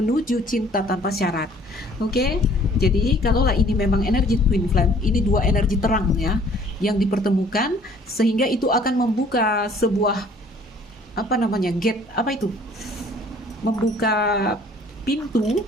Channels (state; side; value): normal; both; correlation 0.56